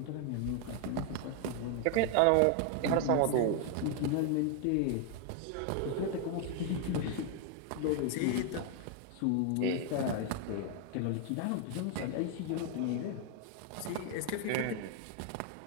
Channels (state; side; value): different; both; correlation 0.00